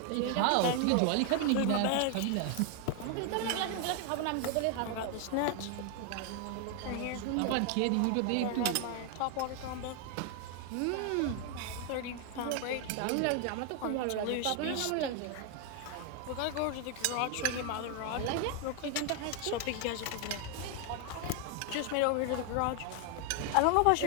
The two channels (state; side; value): different; both; correlation 0.00